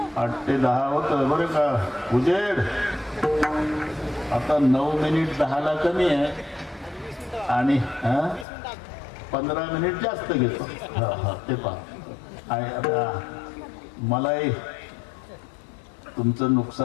8 ते 10 होत बरं का उजेड. आता 9 मिनिट 10ला कमी आहे आणि 15 मिनिट जास्त घेतो. ते पहा, मलाही तुमचं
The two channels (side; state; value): right; drops out; at 8.5 s